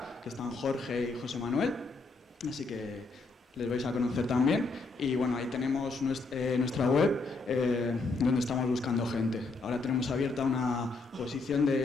que están Jorge y José Manuel, así que les vais a conocer también. Y bueno, ahí tenemos nuestra web donde estamos buscando gente. Ahora tenemos abierta una posición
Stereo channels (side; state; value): right; quieter; 3.6 dB